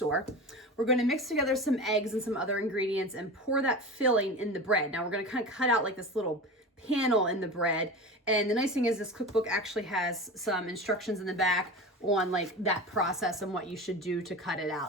We're going to mix together some eggs and some other ingredients and pour that filling in the bread. Now we're going to kind of cut out like this little panel in the bread. And the nice thing is this cookbook actually has some instructions in the back on like that process and what you should do to cut it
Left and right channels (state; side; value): normal; both; correlation 0.30